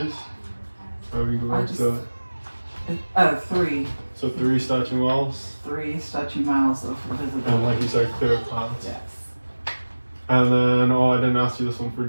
Or we can go I back just- to it. 3. So 3 statute miles, 3 statute miles of visibility. and like you said, clear clouds. Yes. And then, I didn't ask you this one for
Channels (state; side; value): inverted; both; correlation -1.00